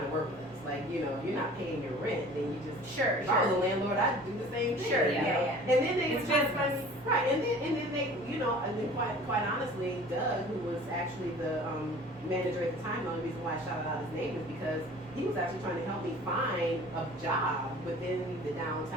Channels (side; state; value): right; noise; rumble, 28 dB below the sound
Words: to work with us. Like, you're not paying your rent, then you just if I was a landlord, I'd do the same thing. Sure, yeah. And then they right, and then they, and then quite honestly, Doug, who was actually the manager at the time, the only reason why I shouted out his name is because he was actually trying to help me find a job within the